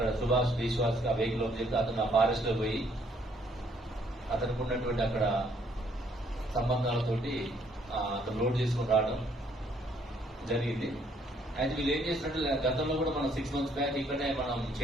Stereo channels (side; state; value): both; normal; correlation 0.66